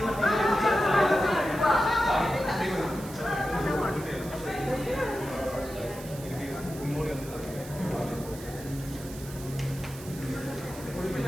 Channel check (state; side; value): noise; right; hiss, 16 dB below the sound